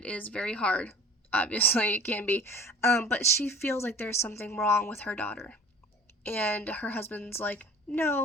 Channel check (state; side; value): normal; both; correlation 0.45